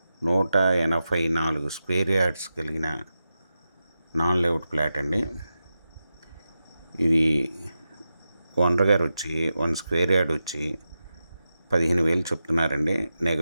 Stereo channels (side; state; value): both; inverted; correlation -0.91